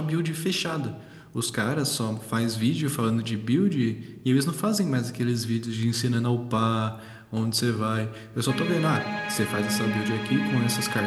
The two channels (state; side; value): identical; both; correlation 1.00